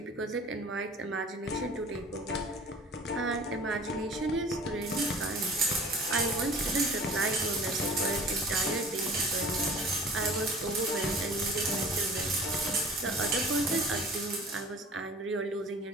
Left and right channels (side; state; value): both; normal; correlation 0.45